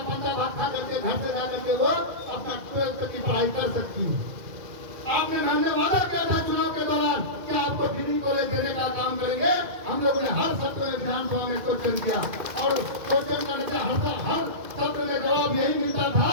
बच्चा भाग खा करके घर से जाकर के वो अपना 12 तक की पढ़ाई कर सकती है। आपने हमने वादा किया था चुनाव के दौरान कि आपको डिग्री कॉलेज देने का काम करेंगे। हम लोगों ने हर सत्र में विधानसभा में क्वेश्चन किया, और क्वेश्चन करने से हर सत्र में जवाब यही मिलता था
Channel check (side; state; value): left; late; 2.1 ms